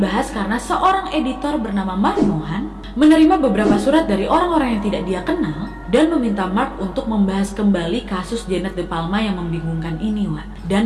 karena seorang editor bernama Mark Mohan menerima beberapa surat dari orang-orang yang tidak dia kenal dan meminta Mark untuk membahas kembali kasus Janet De Palma yang membingungkan ini.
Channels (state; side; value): identical; both; correlation 1.00